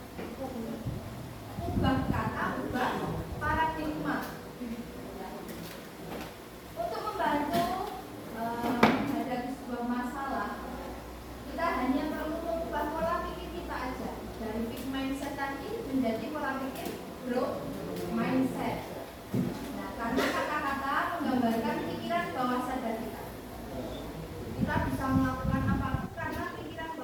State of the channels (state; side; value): identical; both; correlation 1.00